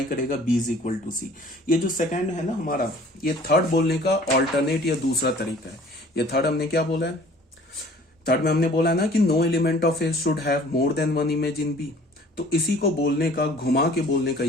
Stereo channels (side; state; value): both; normal; correlation 0.51